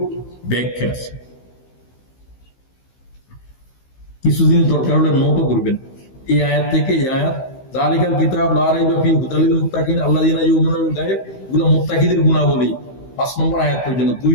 ব্যাখ্যা আছে। কিছু জিনিস দরকার হলে নোটও করবেন, এই আয়াত থেকে এই আয়াত, যালিকাল কিতাব লা রাইবা ফীহি হুদাল লিল মুত্তাকিন আল্লাযীনা ইউমিনুনা বিল গায়ব, এগুলো মুত্তাকিদের গুণাবলী, 5 নম্বর আয়াত পর্যন্ত, 2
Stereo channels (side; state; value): right; late; 15 ms